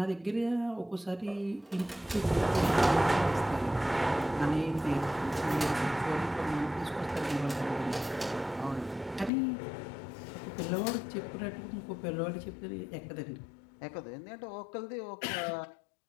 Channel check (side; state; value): right; drops out; at 9.3 s